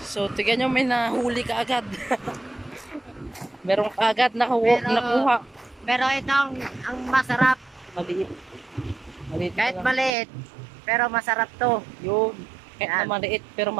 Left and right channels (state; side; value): drops out; left; at 10.1 s